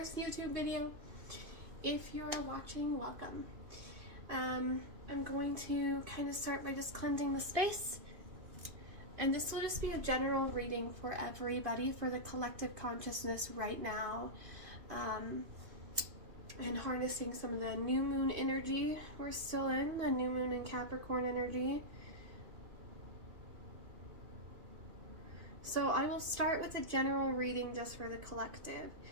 YouTube video. If you're watching, welcome. I'm going to kind of start by just cleansing the space. And this will just be a general reading for everybody, for the collective consciousness right now. And harnessing some of the new moon energy we're still in, the new moon and Capricorn energy. So I will start with a general reading just for the collective.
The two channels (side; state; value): left; late; 2.5 ms